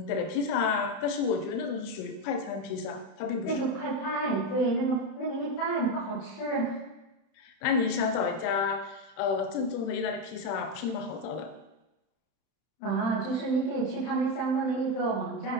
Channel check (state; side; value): late; right; 31 ms